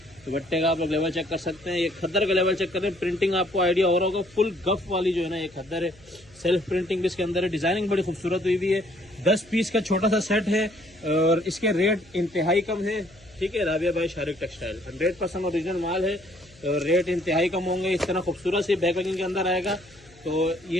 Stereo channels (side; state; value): left; noise; hum, 27 dB below the sound